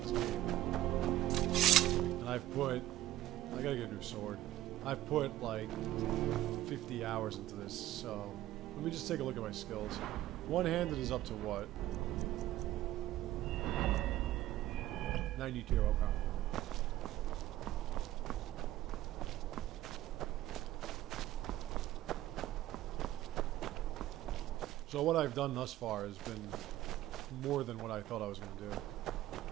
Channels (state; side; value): quieter; left; 14.6 dB